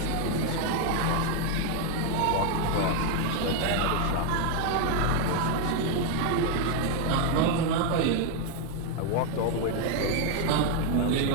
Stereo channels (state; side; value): different; both; correlation 0.01